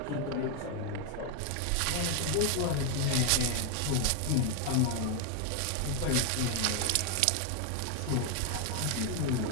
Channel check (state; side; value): different; both; correlation 0.01